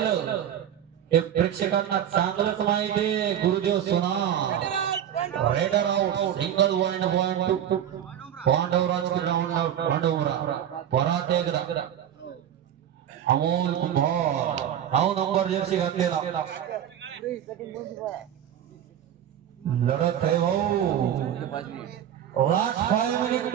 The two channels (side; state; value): left; quieter; 10.1 dB